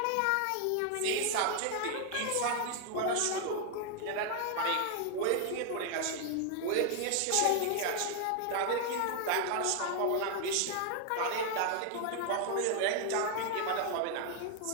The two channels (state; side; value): different; both; correlation 0.00